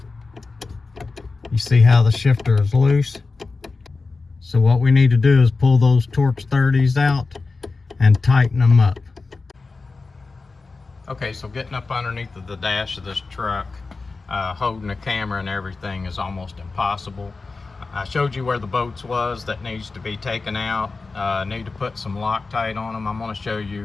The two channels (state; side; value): quieter; right; 3.9 dB